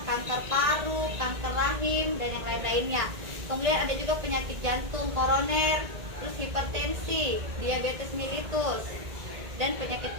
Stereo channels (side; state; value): left; late; 1.8 ms